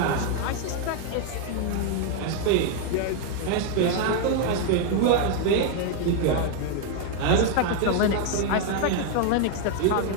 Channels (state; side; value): different; both; correlation 0.00